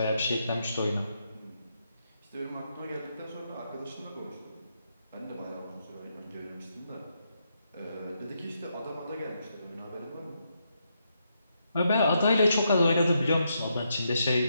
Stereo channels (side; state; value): both; inverted; correlation -0.80